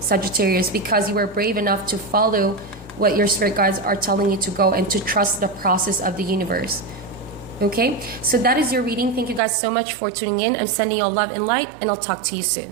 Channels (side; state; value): left; drops out; at 9.4 s